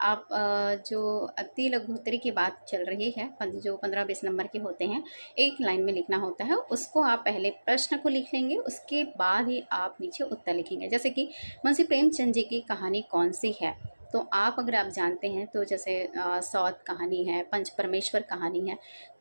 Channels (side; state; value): both; inverted; correlation -1.00